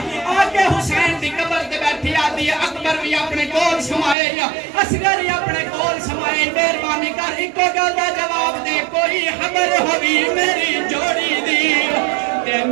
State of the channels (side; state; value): left; drops out; at 4.2 s